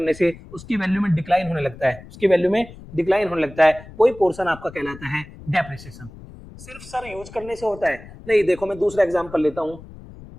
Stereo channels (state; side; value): noise; left; rumble, 17 dB below the sound